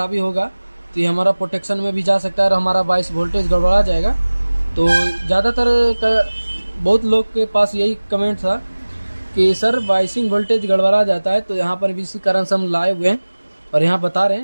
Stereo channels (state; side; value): inverted; both; correlation -1.00